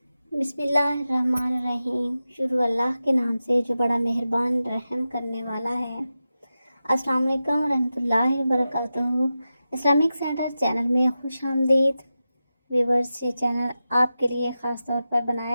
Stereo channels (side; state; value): both; inverted; correlation -0.92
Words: بسم اللہ الرحمن الرحیم۔ شروع اللہ کے نام سے جو بڑا مہربان رحم کرنے والا ہے۔ السلام علیکم ورحمۃ اللہ وبرکاتہ۔ اسلامک سینٹر چینل میں خوش آمدید ویورز۔ یہ چینل آپ کے لیے خاص طور پر